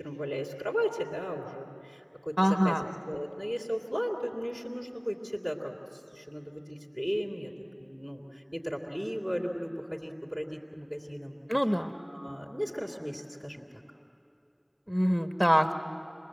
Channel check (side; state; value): both; identical; correlation 1.00